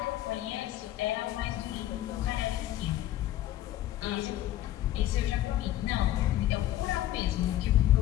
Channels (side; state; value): right; quieter; 13.6 dB